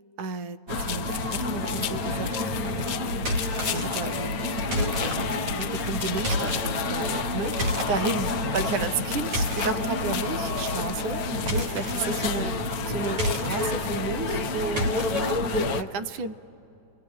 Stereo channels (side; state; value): left; late; 9.0 ms